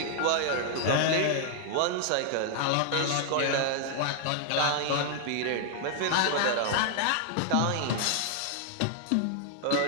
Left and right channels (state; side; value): different; both; correlation 0.00